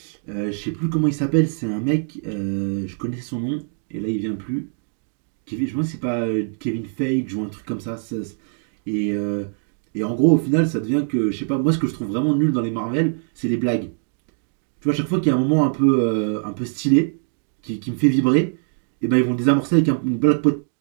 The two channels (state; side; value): silent; left; 58 dB below the other